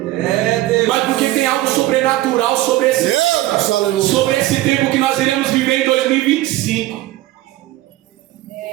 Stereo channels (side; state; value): left; quieter; 16.3 dB